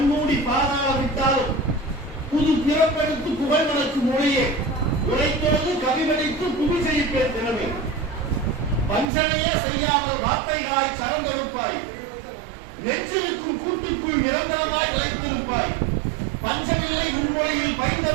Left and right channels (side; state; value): left; drops out; at 9.1 s